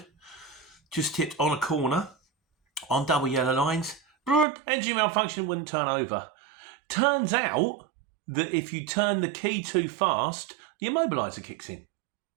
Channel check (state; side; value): drops out; left; at 4.5 s